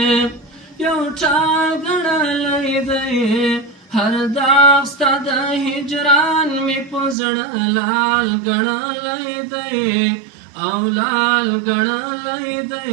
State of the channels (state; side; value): drops out; left; at 7.2 s